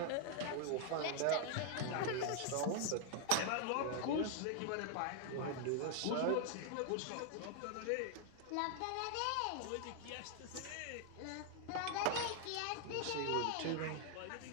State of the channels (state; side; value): different; both; correlation 0.00